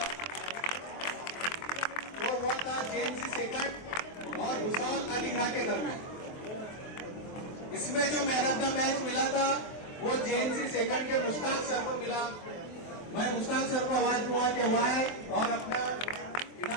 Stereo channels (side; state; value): right; late; 23 ms